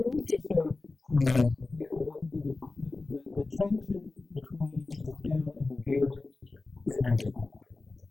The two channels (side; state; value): right; quieter; 3.4 dB